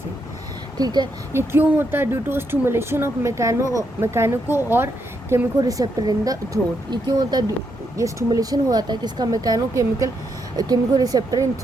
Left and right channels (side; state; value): both; normal; correlation 0.79